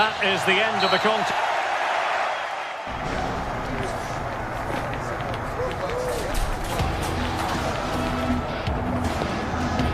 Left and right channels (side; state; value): both; identical; correlation 1.00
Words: is the end of the contest.